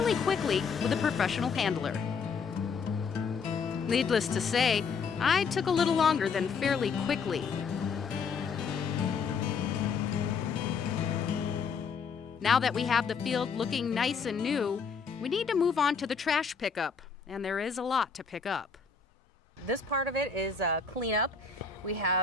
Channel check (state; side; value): quieter; right; 5.5 dB